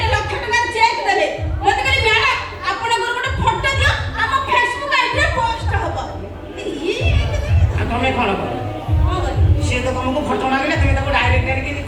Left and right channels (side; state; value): both; identical; correlation 1.00